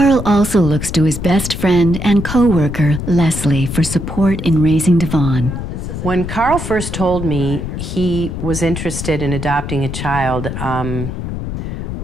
also looks to his best friend and co-worker, Leslie, for support in raising Devon. When Carl first told me he was interested in adopting a child,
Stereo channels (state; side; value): noise; left; rumble, 6 dB below the sound